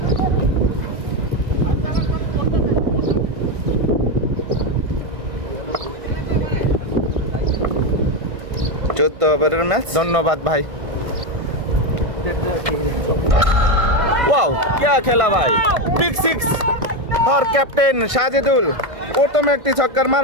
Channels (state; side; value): late; left; 1.6 ms